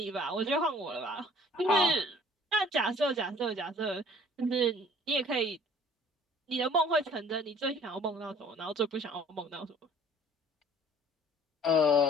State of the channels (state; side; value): normal; both; correlation 0.53